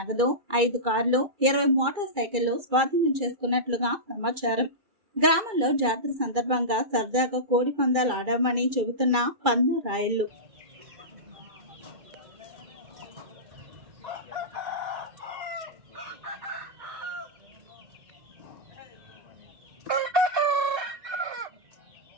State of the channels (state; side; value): late; left; 2.3 ms